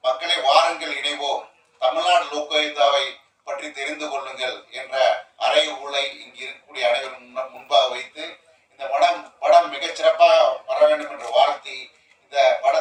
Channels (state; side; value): identical; both; correlation 1.00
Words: மக்களை வாருங்கள் இணைவோம், தமிழ்நாடு லோக்குயித்தாவை பற்றி தெரிந்து கொள்ளுங்கள் என்ற அறைகூலை இங்கு இருக்கக்கூடிய அனைவரும் முன்பாக வைத்து இந்த படம் மிகச் சிறப்பாக வர வேண்டும் என்று வாழ்த்தி இந்த